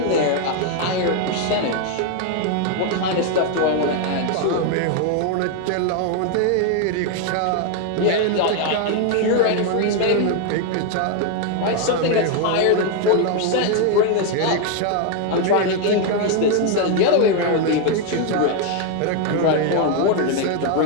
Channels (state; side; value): different; both; correlation 0.01